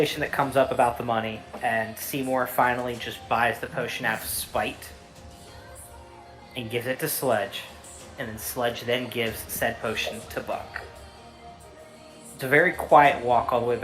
that comes up about the money, and Seymour finally just buys the potion out of spite and gives it to Sledge, and then Sledge then gives said potion to Buck. It's a very quiet walk all the way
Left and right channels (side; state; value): both; identical; correlation 1.00